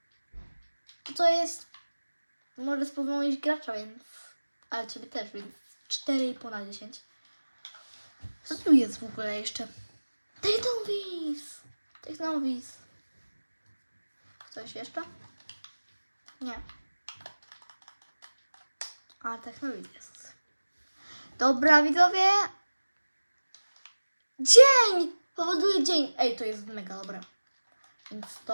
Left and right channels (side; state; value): both; inverted; correlation -1.00